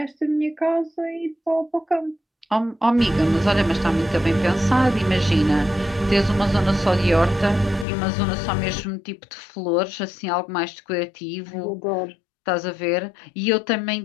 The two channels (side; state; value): right; drops out; at 7.9 s